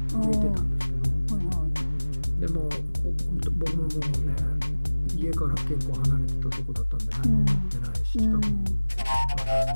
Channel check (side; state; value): both; inverted; correlation -1.00